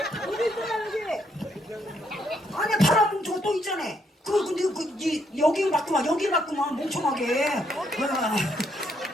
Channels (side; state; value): both; normal; correlation 0.74